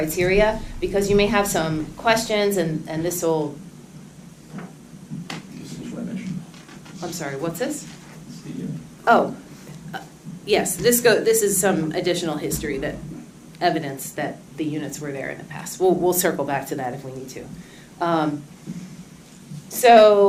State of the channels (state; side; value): identical; both; correlation 1.00